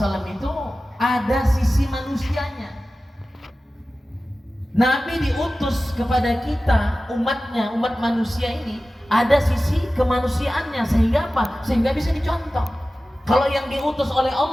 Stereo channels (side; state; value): both; normal; correlation 0.95